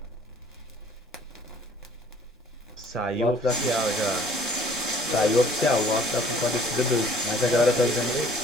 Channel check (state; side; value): normal; both; correlation 0.56